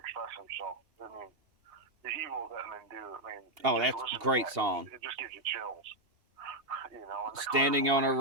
himself. I mean, the Evil that Men Do. I mean, that's a great song. It just gives you chills. Standing on a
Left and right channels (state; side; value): late; left; 2.8 ms